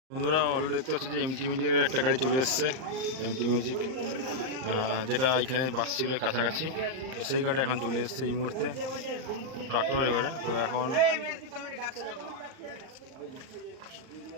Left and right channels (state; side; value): late; left; 38 ms